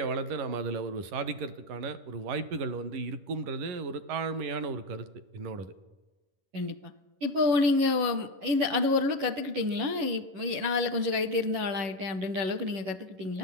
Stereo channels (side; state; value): left; late; 11 ms